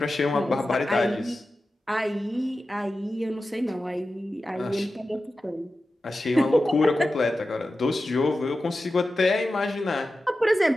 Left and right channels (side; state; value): both; normal; correlation 0.93